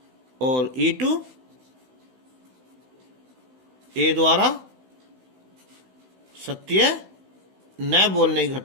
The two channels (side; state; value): left; late; 16 ms